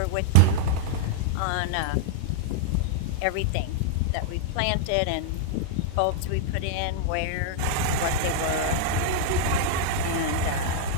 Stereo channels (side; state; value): both; different; correlation -0.01